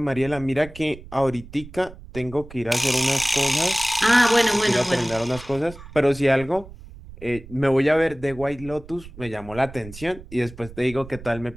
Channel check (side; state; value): right; noise; rumble, 17 dB below the sound